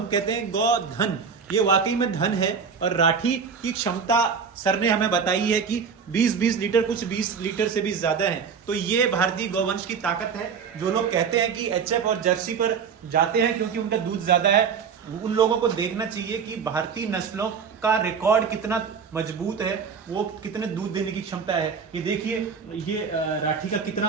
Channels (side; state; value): left; quieter; 6.2 dB